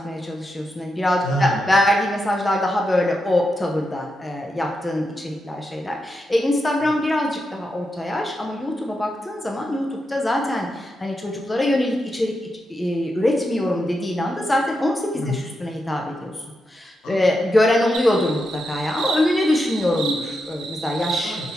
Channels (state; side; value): normal; both; correlation 0.86